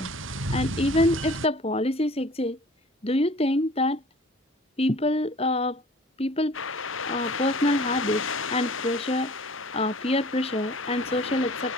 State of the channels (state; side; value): normal; both; correlation 0.47